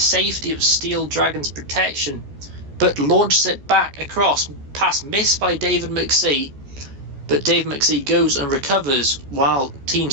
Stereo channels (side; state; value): left; late; 14 ms